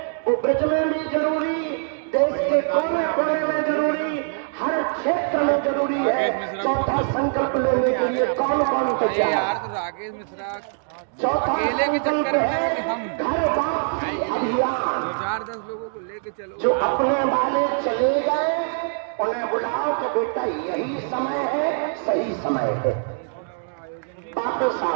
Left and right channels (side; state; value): left; silent; digital silence